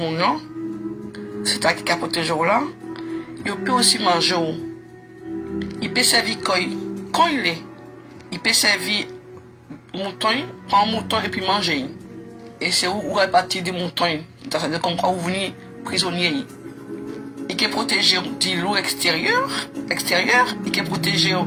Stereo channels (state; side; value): identical; both; correlation 1.00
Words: c'est à qui a protégé là, il peut aussi manger. Il peut servir quand il est. Il peut servir mouton, prendre un mouton et puis manger. Et c'est où répartir des moutons. C'est comme quand vous venez prisonnier. Il peut protéger du loup extérieur, il peut protéger